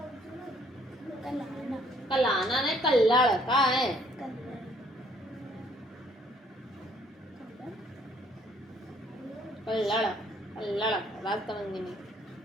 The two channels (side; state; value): both; normal; correlation 0.63